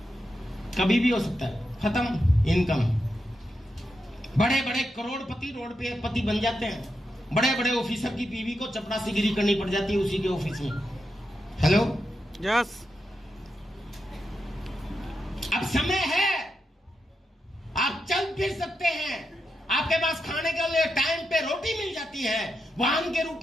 कभी भी हो सकता है, खत्म इनकम। बड़े बड़े करोड़पति रोड पे पति बन जाते हैं। बड़े बड़े ऑफिसर की बीवी को चपरासीगिरी करनी पड़ जाती है उसी के ऑफिस में। हेलो, यस, अब समय है, आप चल फिर सकते हैं। आपके पास खाने के लिए टाइम पे रोटी मिल जाती है, वाहन के रूप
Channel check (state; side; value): normal; both; correlation 0.86